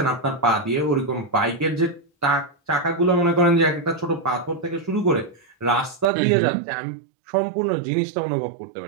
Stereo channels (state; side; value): drops out; left; at 6.1 s